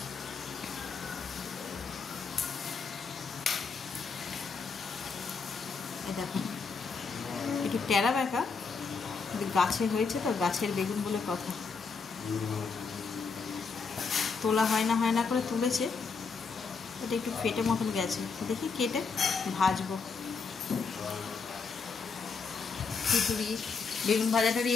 এই দেখো একটু টেরা বেঁকা, গাছে হয়েছে তো, গাছের বেগুন বলে কথা, তোলা হয় না করে তুলেছে। এটা একটু ফেটে মতন গেছে, দেখি কেটে ভাজবো। খিচুড়ি বেগুন ভাজাটারই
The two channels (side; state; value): right; quieter; 5.0 dB